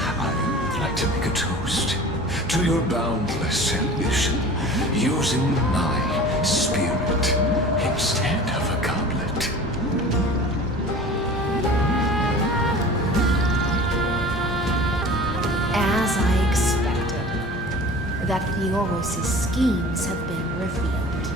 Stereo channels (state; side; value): normal; both; correlation 0.41